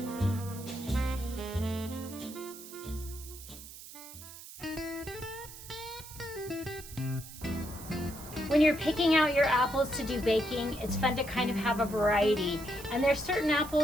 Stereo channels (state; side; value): noise; right; hiss, 15 dB below the sound